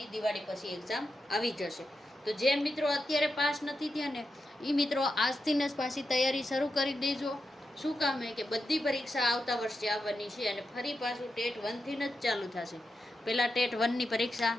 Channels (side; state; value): both; normal; correlation 0.88